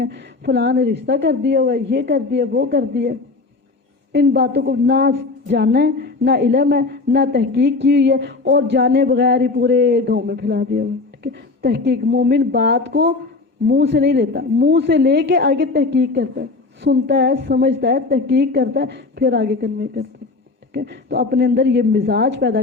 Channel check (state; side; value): quieter; right; 3.7 dB